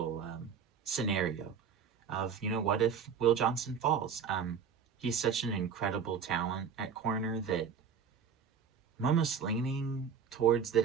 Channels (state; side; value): quieter; left; 6.7 dB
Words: scenario of, what if Will Johnson falls? He's such an incredible talent at corner that I'm almost leaning towards